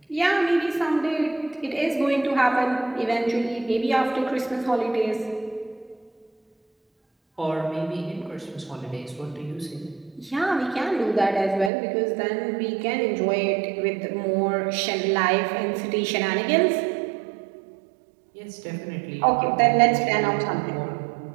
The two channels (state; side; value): drops out; left; at 11.7 s